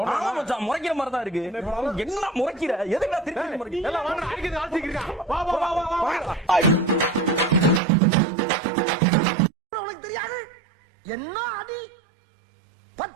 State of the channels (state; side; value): drops out; left; at 7.8 s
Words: முறைக்கிற மாதிரி தான் இருக்கு. என்ன முறைக்கிற? எதுக்கு திருப்பி முறைக்கிற? உனக்கு தெரியாது என்ன அடி?